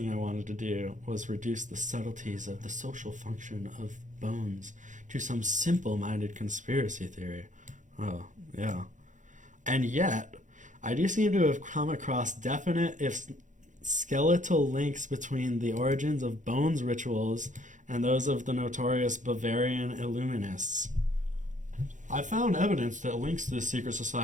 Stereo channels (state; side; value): late; left; 0.36 ms